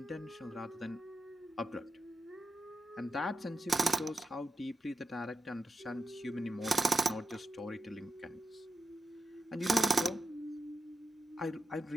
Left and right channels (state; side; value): normal; both; correlation 0.88